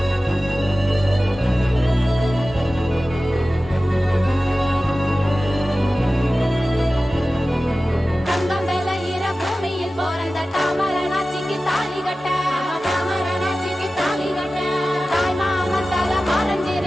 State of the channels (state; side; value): normal; both; correlation 0.95